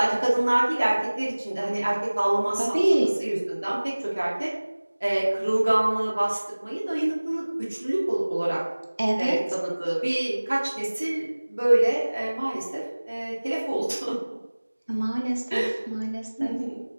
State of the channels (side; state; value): both; inverted; correlation -1.00